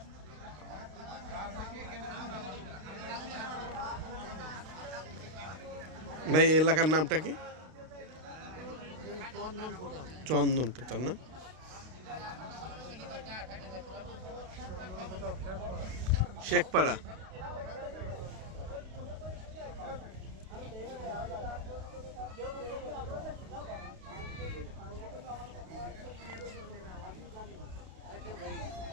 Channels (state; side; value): late; left; 32 ms